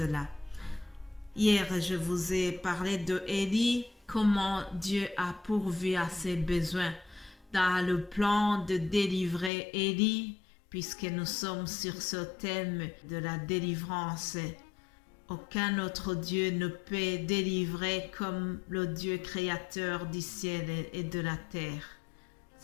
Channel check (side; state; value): right; drops out; at 9.5 s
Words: Hier, je vous ai parlé de Élie, comment Dieu a pourvu à ses besoins dans le plan de délivrer Élie. Puisque nous sommes sur ce thème de la délivrance, aucun autre Dieu ne peut délivrer comme le Dieu créateur du ciel et de la terre.